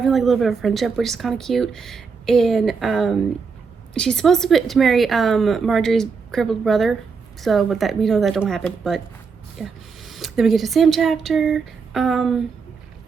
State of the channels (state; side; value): quieter; left; 5.2 dB